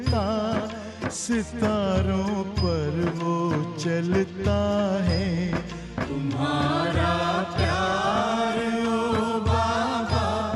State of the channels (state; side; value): identical; both; correlation 1.00